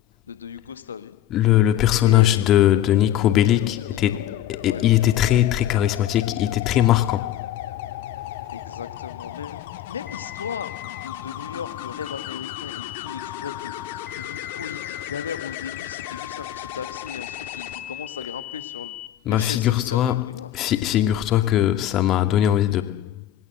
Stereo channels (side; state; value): right; quieter; 12.0 dB